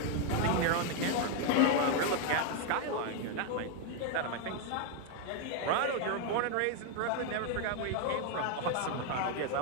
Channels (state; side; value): different; both; correlation 0.01